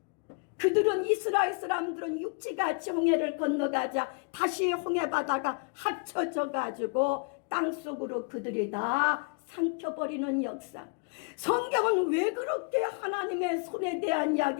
그들은 이스라엘 사람들은 육지같이 홍해를 건너가자 다시 홍해바다가 합쳐져 가지고 땅속으로 그들이 다 삼켜버리는 역사. 성경은 왜 그렇게 하나님의 손에 대한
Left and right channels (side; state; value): right; quieter; 36.2 dB